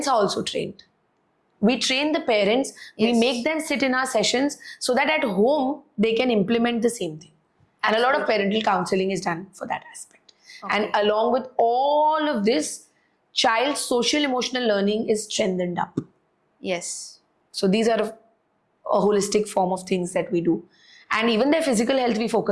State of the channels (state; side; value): identical; both; correlation 1.00